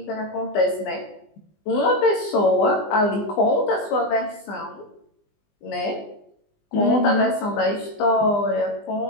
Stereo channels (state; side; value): late; right; 20 ms